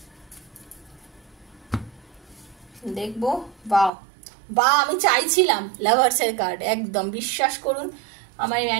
দেখবো, বা আমি চাইছিলাম লাভার্সের কার্ড, একদম বিশ্বাস করুন আমার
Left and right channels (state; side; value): drops out; left; at 3.9 s